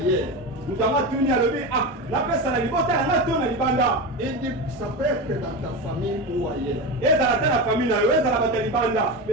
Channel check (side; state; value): both; normal; correlation 0.21